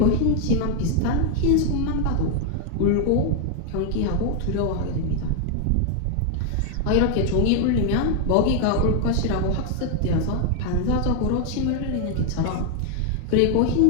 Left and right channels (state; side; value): different; both; correlation 0.00